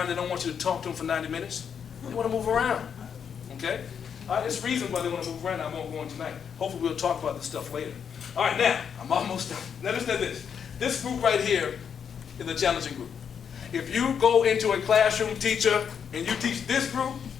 They don't want you to talk to them for 90 minutes. They want to move around, okay? There's reasons why they want to move around. I won't go on tonight. Hopefully we'll talk about this stuff later. All right, now, I'm almost done. Now listen to this. This group right here is a challenging group. If you go into a classroom, teacher, and you teach this group,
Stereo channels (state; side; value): quieter; right; 7.4 dB